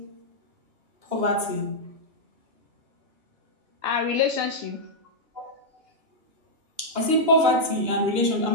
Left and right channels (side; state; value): left; late; 2.9 ms